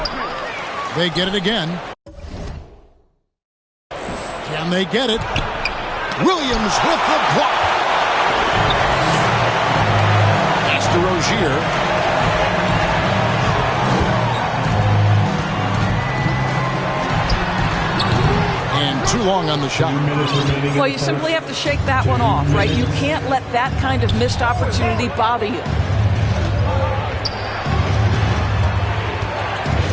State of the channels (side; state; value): both; identical; correlation 1.00